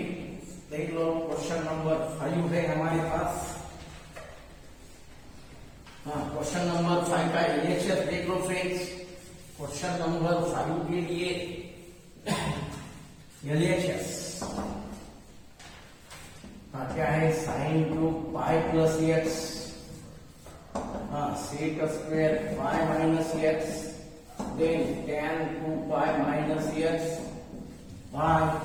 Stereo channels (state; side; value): identical; both; correlation 1.00